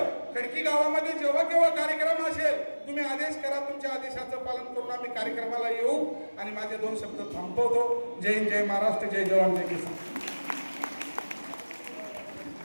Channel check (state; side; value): inverted; both; correlation -1.00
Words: खडकी गावामध्ये जेव्हा केव्हा कार्यक्रम असेल तुम्ही आदेश करा. तुमच्या आदेशाचं पालन करून आम्ही कार्यक्रमाला येऊ. आणि माझे 2 शब्द थांबवतो. जय हिंद, जय महाराष्ट्र, जय जवान, जय किसान.